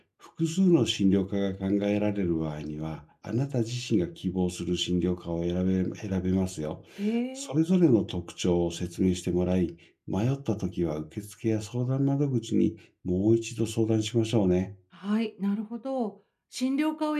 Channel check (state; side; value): identical; both; correlation 1.00